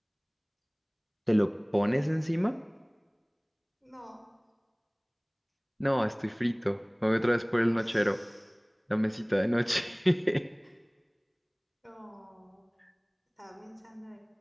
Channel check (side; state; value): both; identical; correlation 1.00